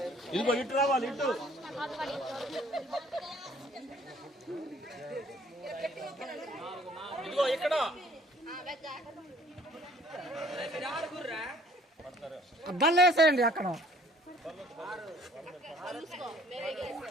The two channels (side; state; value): both; normal; correlation 0.57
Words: ఇదిగో ఇటు రావాలి, ఇటు. ఇదిగో ఇక్కడ అద్దాలు వేసేయండి అక్కడ.